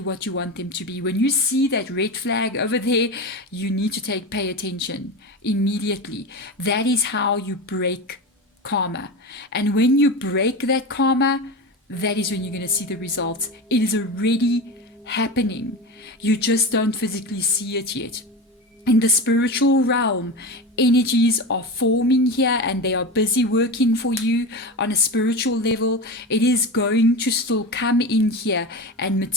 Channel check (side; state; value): both; normal; correlation 0.24